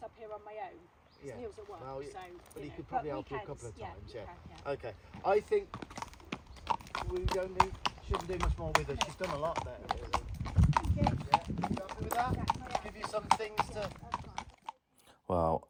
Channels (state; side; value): identical; both; correlation 1.00